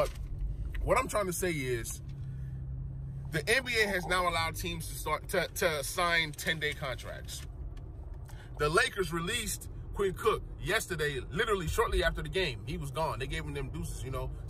what I'm trying to say is the NBA has now allowed teams to start to sign 10-day contracts. The Lakers released Quinn Cook yesterday, literally shortly after the game. He was gone. They gave him them deuces, you know,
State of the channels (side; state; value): both; identical; correlation 1.00